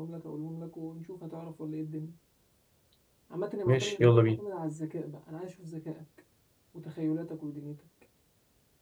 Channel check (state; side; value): identical; both; correlation 1.00